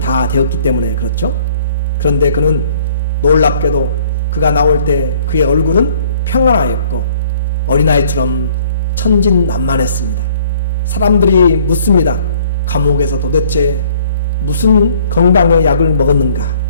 되었기 때문에 그렇죠. 그런데 그는 놀랍게도 그가 나올 때 그의 얼굴은 평안하였고 어린아이처럼 천진난만했습니다. 사람들이 묻습니다. 감옥에서 도대체 무슨 건강의 약을 먹었는가?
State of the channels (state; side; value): inverted; both; correlation -0.58